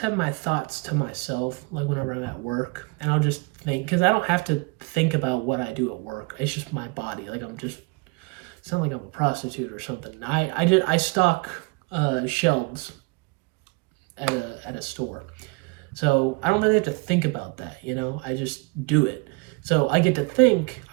have my thoughts to myself, like whenever I'm at work, and I'll just think because I don't have to think about what I do at work. It's just my body. Like it's not like I'm a prostitute or something. I stock shelves at a store, so I don't really have to think about that. You know, I just do it. So I get to think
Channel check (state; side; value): quieter; left; 28.3 dB